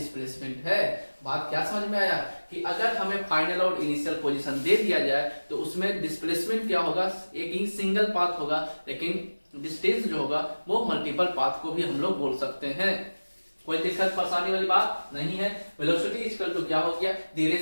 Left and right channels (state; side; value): inverted; both; correlation -1.00